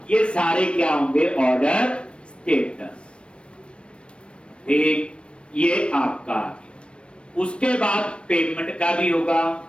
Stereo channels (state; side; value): late; right; 0.058 ms